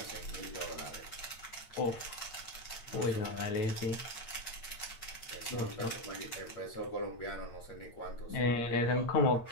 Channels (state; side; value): late; right; 8.8 ms